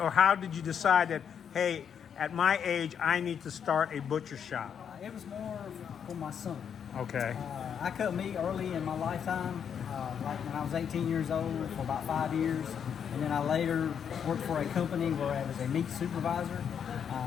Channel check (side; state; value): right; quieter; 7.8 dB